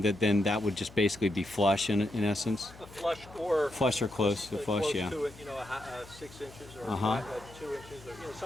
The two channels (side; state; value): left; noise; hum, 20 dB below the sound